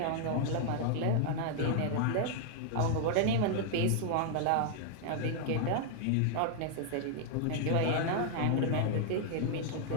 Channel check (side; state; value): both; different; correlation 0.00